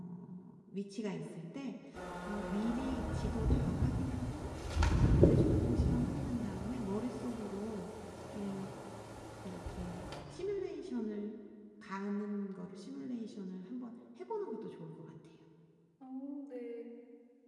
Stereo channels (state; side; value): identical; both; correlation 1.00